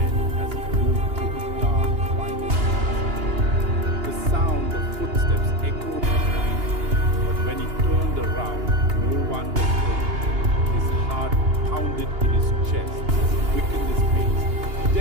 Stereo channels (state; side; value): late; left; 2.8 ms